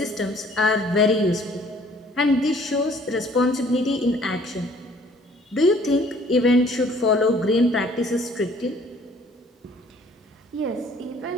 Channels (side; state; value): both; normal; correlation 0.57